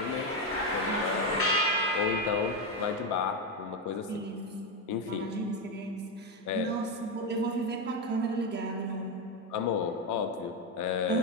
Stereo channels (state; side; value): normal; both; correlation 0.09